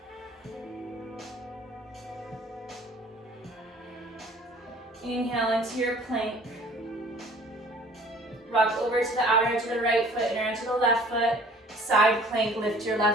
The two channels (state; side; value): normal; both; correlation 0.52